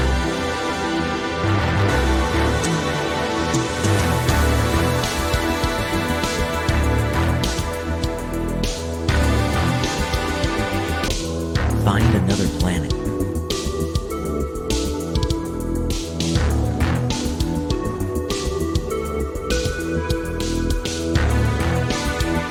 Find another planet.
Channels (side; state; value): both; identical; correlation 1.00